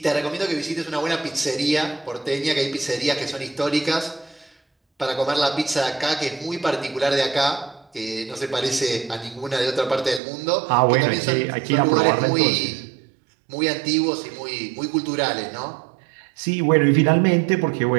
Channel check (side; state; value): left; drops out; at 10.2 s